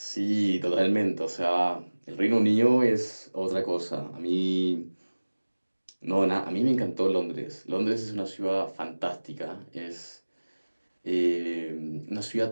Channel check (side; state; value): both; inverted; correlation -1.00